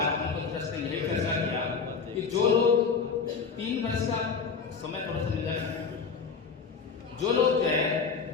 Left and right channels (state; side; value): quieter; right; 5.5 dB